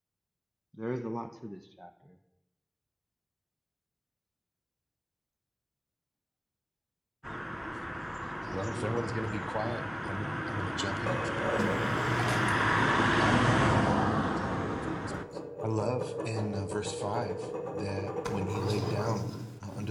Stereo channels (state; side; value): identical; both; correlation 1.00